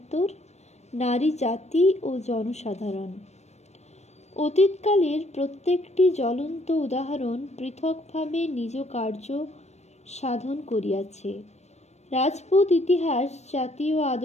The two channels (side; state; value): right; late; 0.32 ms